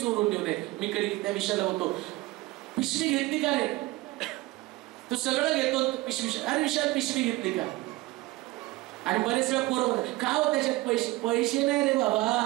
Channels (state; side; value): quieter; left; 19.7 dB